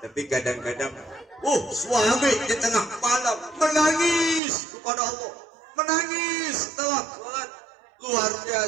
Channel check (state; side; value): drops out; left; at 4.4 s